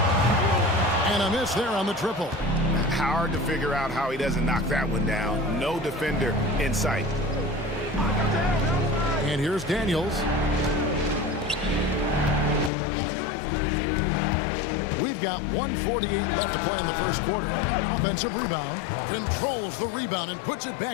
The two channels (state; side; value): drops out; right; at 12.7 s